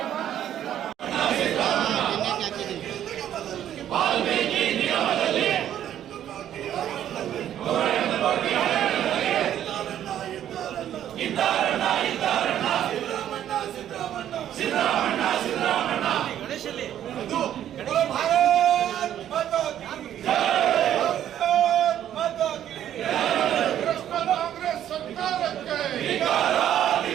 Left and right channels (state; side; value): quieter; left; 10.9 dB